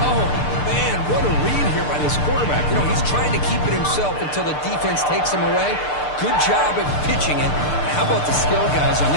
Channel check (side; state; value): right; late; 6.7 ms